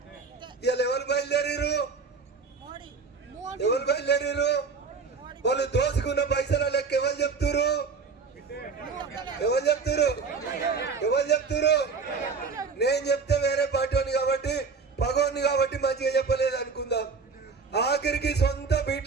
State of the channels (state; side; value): quieter; left; 5.0 dB